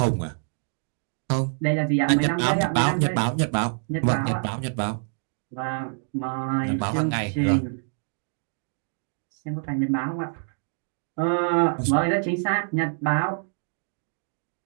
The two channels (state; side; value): silent; left; 61 dB below the other